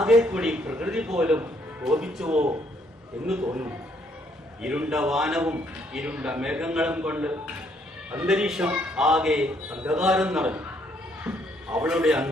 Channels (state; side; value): normal; both; correlation 0.69